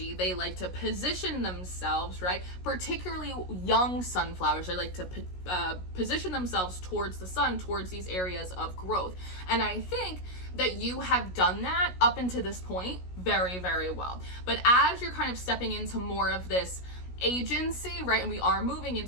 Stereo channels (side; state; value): right; late; 16 ms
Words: They like to position themselves, right? Particularly young sunflowers, they like to position themselves towards the sun, towards these areas of growth. And I think that you have done that up until this point very, very well. But as you're kind of stepping into more of this agency, right? And we are moving